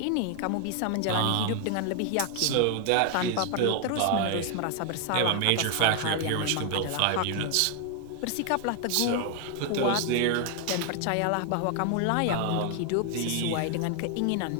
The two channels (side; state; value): both; different; correlation 0.00